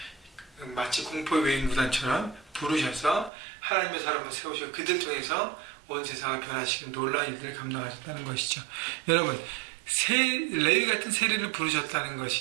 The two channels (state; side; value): drops out; left; at 3.3 s